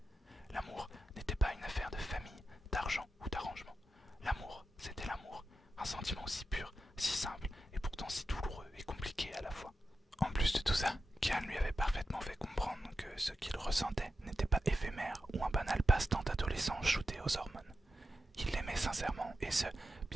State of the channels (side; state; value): both; normal; correlation 0.89